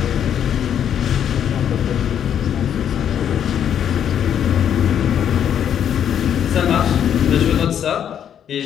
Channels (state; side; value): quieter; right; 9.2 dB